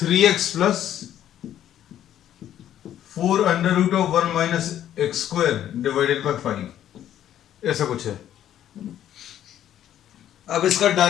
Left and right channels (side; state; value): right; quieter; 11.2 dB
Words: plus 4 under root of 1 minus x square divided by 5, ऐसा कुछ है. अब इसका